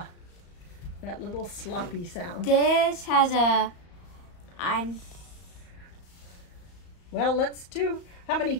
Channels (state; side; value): late; right; 34 ms